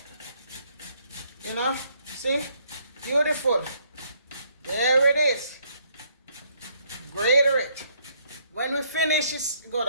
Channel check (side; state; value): both; inverted; correlation -0.69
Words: You know, see? Beautiful. There it is. Grater it. When we finish it, go